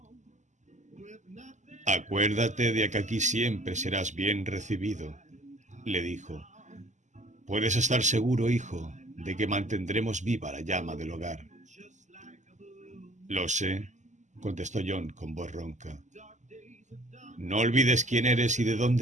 «Acuérdate de que aquí siempre serás bien recibido», le dijo. «Puedes estar seguro, hijo, de que mantendremos viva la llama del hogar». «Lo sé», contestó John con voz ronca. «No olvides quién eres y de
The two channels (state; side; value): late; left; 0.34 ms